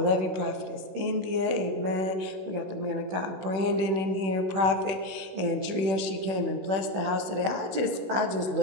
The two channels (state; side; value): late; left; 16 ms